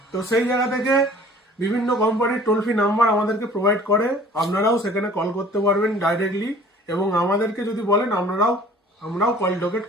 তো সেই জায়গা থেকে বিভিন্ন কোম্পানির টোল ফ্রি নাম্বার আমাদেরকে প্রোভাইড করে, আপনারাও সেখানে কল করতে পারবেন ডাইরেক্টলি এবং আমাদেরকে যদি বলেন আমরাও কল লোকেট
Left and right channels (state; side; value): normal; both; correlation 0.50